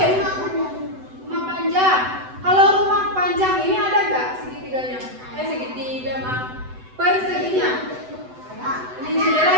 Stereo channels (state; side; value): late; left; 7.9 ms